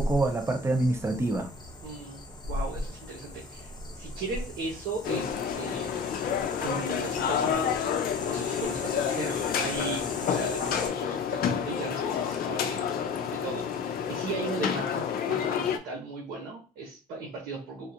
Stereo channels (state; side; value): quieter; right; 3.3 dB